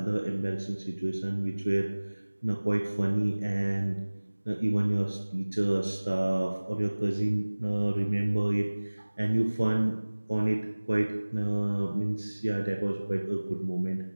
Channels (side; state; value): both; inverted; correlation -1.00